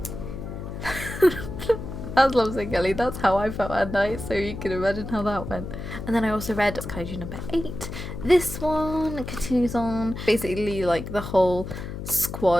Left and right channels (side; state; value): left; noise; hum, 8 dB below the sound